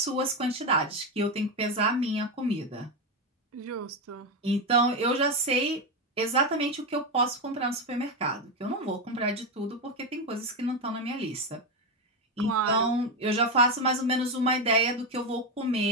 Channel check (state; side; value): normal; both; correlation 0.10